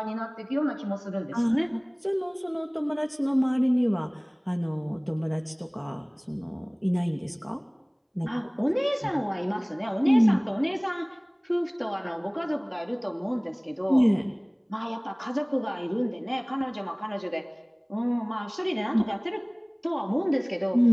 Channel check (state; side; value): identical; both; correlation 1.00